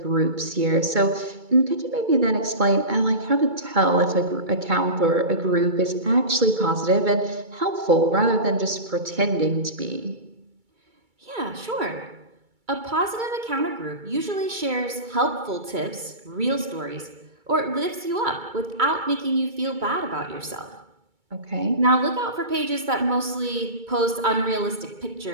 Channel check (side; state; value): left; late; 2.3 ms